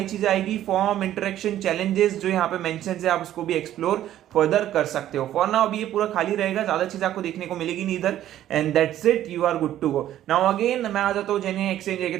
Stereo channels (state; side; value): quieter; left; 12.4 dB